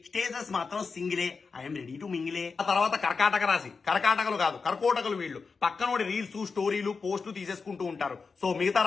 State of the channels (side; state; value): right; quieter; 4.8 dB